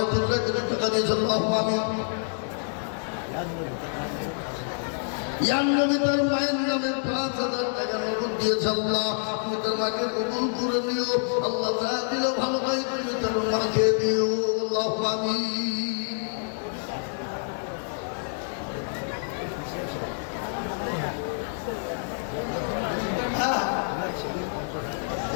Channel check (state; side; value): silent; right; 55 dB below the other